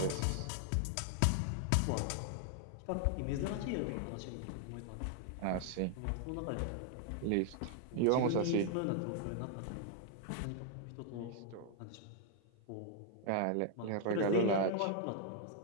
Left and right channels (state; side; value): different; both; correlation 0.00